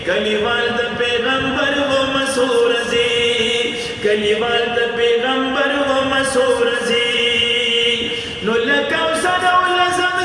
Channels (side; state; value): both; identical; correlation 1.00